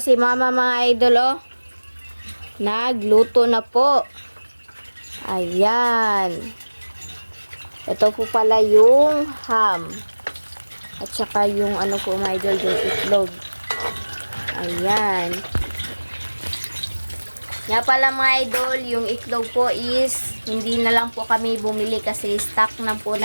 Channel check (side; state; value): both; inverted; correlation -1.00